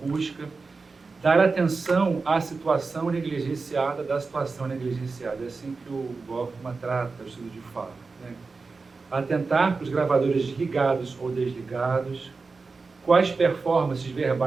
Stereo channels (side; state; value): left; quieter; 4.2 dB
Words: dar atenção à situação negligenciada da situação negligenciada. É assim que o Goffman trata o estudo de fala, né? Atentar para os gravadores ligados ou desligados, quais performances